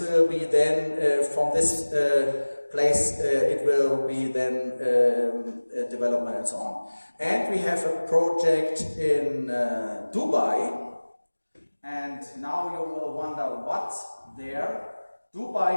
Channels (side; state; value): both; inverted; correlation -1.00